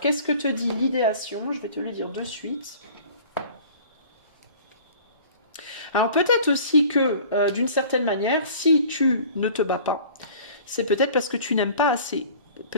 que te dit l'idéation? Je vais te le dire de suite. Alors, peut-être aussi que, d'une certaine manière, si tu ne te bats pas, c'est peut-être parce que tu n'aimes pas assez.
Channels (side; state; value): both; inverted; correlation -0.46